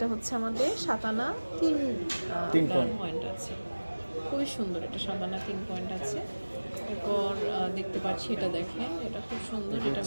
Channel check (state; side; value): inverted; both; correlation -1.00